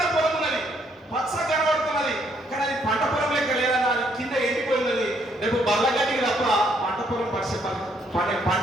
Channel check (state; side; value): normal; both; correlation 0.69